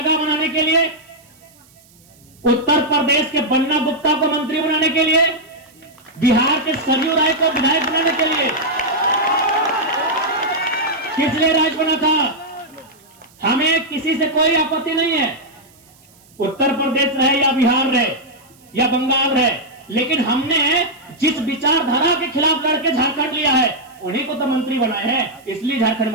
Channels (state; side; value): noise; right; hiss, 29 dB below the sound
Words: बनाने के लिए, उत्तर प्रदेश के बन्ना गुप्ता को मंत्री बनाने के लिए, बिहार के सरयू राय को विधायक बनाने के लिए। किस लिए राज बना था? हमें किसी से कोई आपत्ति नहीं है, उत्तर प्रदेश रहे या बिहार रहे या बंगाल रहे, लेकिन हमने जिस विचारधारा के खिलाफ लड़के झारखंड लिया है, उन्हीं को तो मंत्री बनाए हैं, इसलिए झारखंड